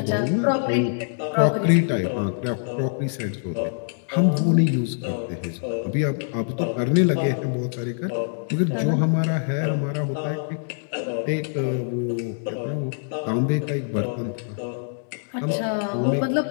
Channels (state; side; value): silent; right; digital silence